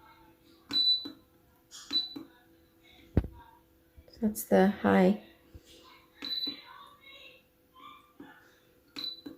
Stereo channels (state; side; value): identical; both; correlation 1.00